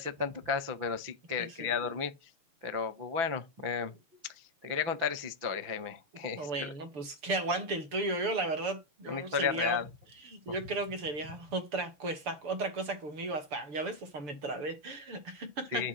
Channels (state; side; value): late; left; 6.8 ms